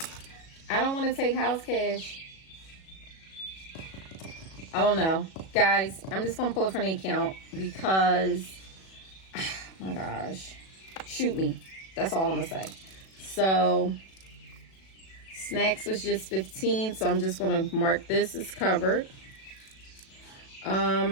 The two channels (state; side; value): late; right; 37 ms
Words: I don't want to take house cash. I don't know. Guys, I'm just going to pull it from the account because, oh my gosh, shoot me. That's all I'm going to say. So, snacks was just 15, so I'm just going to mark this as covered.